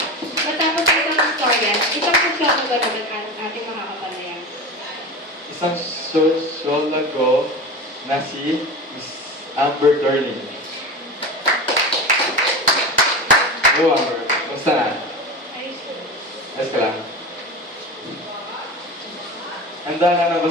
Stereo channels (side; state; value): both; normal; correlation 0.28